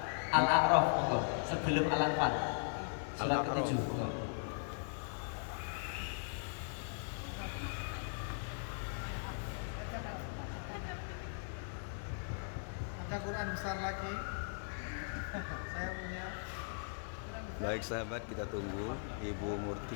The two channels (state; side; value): silent; right; digital silence